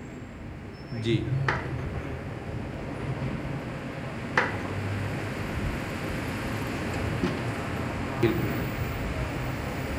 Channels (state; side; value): identical; both; correlation 1.00